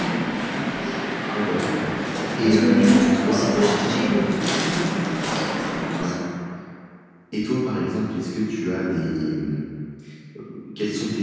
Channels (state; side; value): identical; both; correlation 1.00